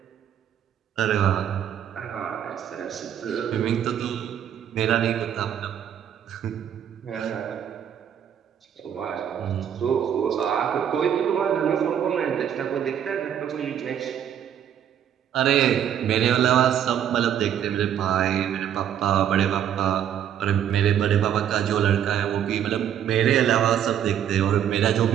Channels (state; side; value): quieter; left; 9.6 dB